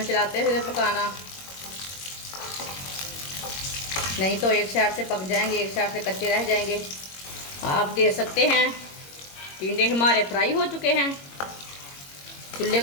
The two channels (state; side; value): late; right; 21 ms